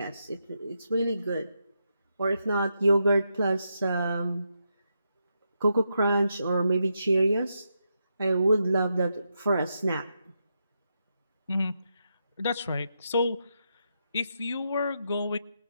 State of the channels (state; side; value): inverted; both; correlation -0.83